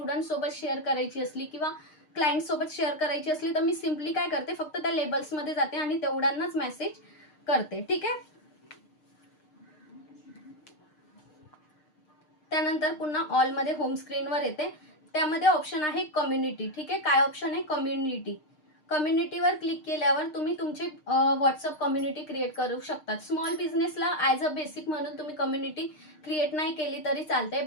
सोबत शेअर करायची असली किंवा क्लायंट सोबत शेअर करायची असली तर मी सिम्पली काय करते, फक्त त्या लेबल्समध्ये जाते आणि तेवढ्यांनाच मेसेज करते. ठीक आहे. त्यानंतर पुन्हा ऑल मध्ये होम स्क्रीनवर येते. त्यामध्ये ऑप्शन आहे कम्युनिटी. ठीक आहे. काय ऑप्शन आहे, कम्युनिटी. कम्युनिटीवर क्लिक केल्यावर तुम्ही तुमची व्हॉट्सअप कम्युनिटी क्रिएट करू शकता. स्मॉल बिझनेसला ॲज अ बेसिक म्हणून तुम्ही कम्युनिटी क्रिएट नाही केली तरी चालते,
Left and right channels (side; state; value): right; late; 6.6 ms